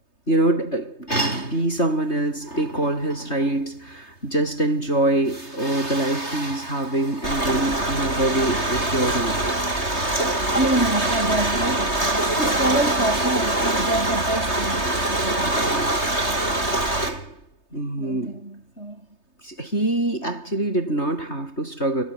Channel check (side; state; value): right; late; 3.3 ms